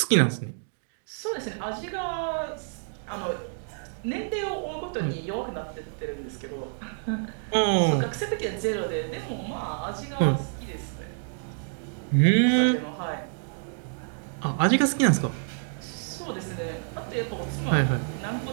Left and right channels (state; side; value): silent; left; digital silence